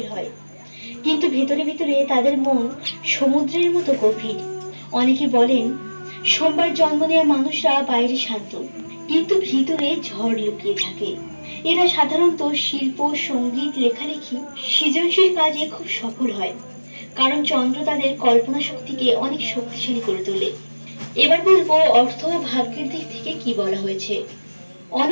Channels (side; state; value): both; inverted; correlation -1.00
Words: হয়, কিন্তু ভেতরে ভেতরে তাদের মন সমুদ্রের মতো গভীর। অনেকে বলেন সোমবার জন্ম নেওয়া মানুষরা বাইরে শান্ত, কিন্তু ভিতরে ঝড় লুকিয়ে থাকে। এরা সাধারণত শিল্প, সঙ্গীত, লেখালেখি, সৃজনশীল কাজে খুব সফল হয়, কারণ চন্দ্র তাদের কল্পনা শক্তিকে অনেক শক্তিশালী করে তোলে। এবার বলবো অর্থ ও ভাগ্যের দিক থেকে কি বলা হয়েছে।